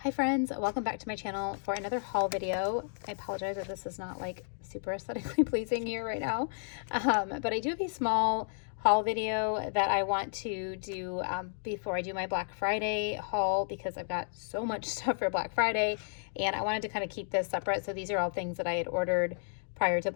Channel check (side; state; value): right; silent; digital silence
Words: Hi friends, welcome back to my channel for another haul video. I apologize if this is not like super aesthetically pleasing here right now, but I do have a small haul video that I want to do before I do my Black Friday haul, because I've got so much stuff for Black Friday and I wanted to kind of keep this separate. So these are all things that I had ordered prior to